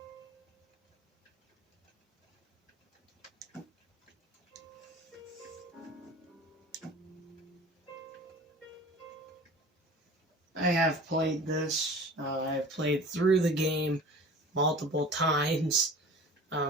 I have played this. I've played through the game multiple times,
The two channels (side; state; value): both; normal; correlation 0.41